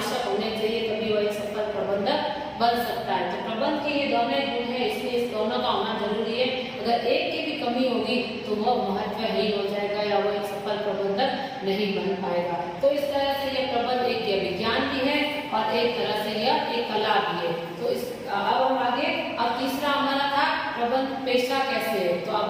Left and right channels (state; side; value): identical; both; correlation 1.00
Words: होने चाहिए, तभी वो एक सफल प्रबंधक बन सकता है। तो प्रबंध के ये दोनों गुण है, इसलिए इस दोनों का होना जरूरी है। अगर एक की भी कमी होगी तो वह महत्वहीन हो जाएगा या वो एक सफल प्रबंधक नहीं बन पाएगा। तो इस तरह से यह प्रबंध एक विज्ञान भी है और एक तरह से यह एक कला भी है। तो इस अब हम आगे, अब तीसरा हमारा था प्रबंध पेशा कैसे है, तो